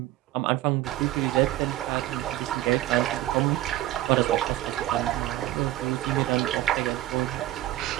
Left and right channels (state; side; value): quieter; left; 15.1 dB